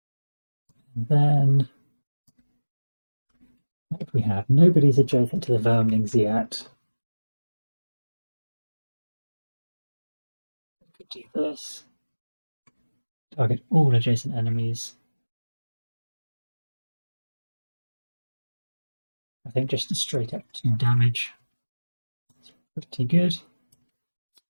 And then what do we have? Nobody's adjacent to the Firmlings yet. We could do this. Target all adjacent enemies. I think just a straight up 2 damage. It's pretty good.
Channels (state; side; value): inverted; both; correlation -1.00